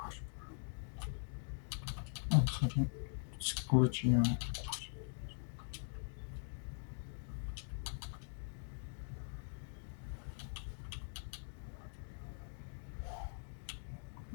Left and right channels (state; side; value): silent; right; digital silence